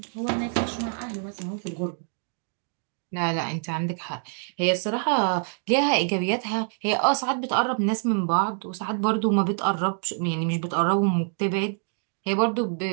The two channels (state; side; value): silent; left; 61 dB below the other